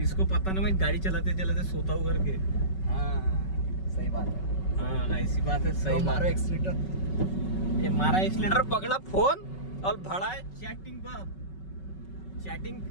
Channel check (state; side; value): late; right; 5.3 ms